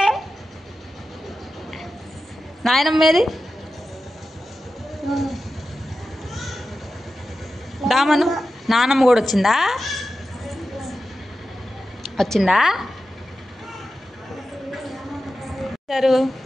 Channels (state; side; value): normal; both; correlation 0.92